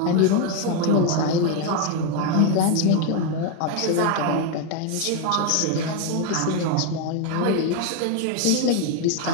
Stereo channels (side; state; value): both; different; correlation 0.01